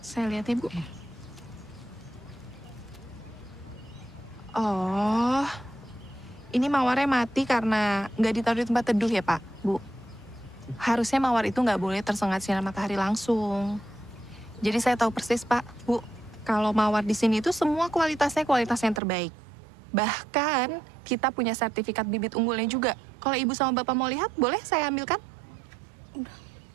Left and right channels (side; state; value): left; drops out; at 19.0 s